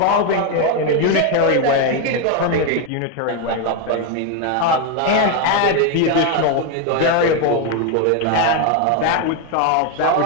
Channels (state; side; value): different; both; correlation 0.02